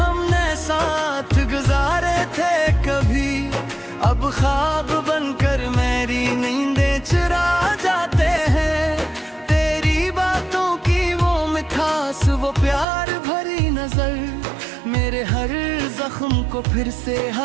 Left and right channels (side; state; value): left; drops out; at 12.9 s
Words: हमने साथ गुजारे थे कभी, अब ख्वाब बनकर मेरी नींदें चुरा जाते हैं। तेरी बातों की वो मिठास, वो प्यार भरी नजर मेरे हर जख्म को फिर से